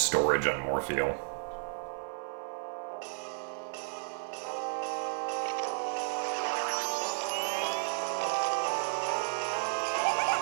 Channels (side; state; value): left; silent; 56 dB below the other